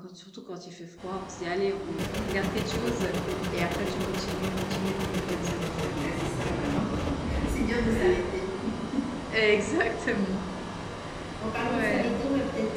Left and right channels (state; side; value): identical; both; correlation 1.00